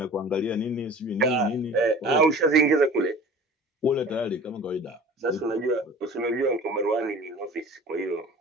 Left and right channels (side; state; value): both; normal; correlation 0.43